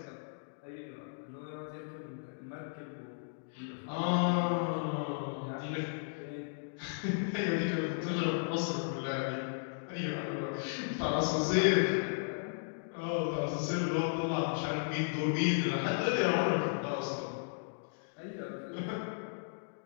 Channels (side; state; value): right; silent; digital silence